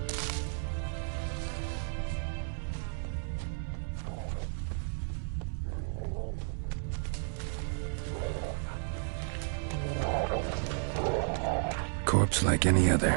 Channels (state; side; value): silent; left; 56 dB below the other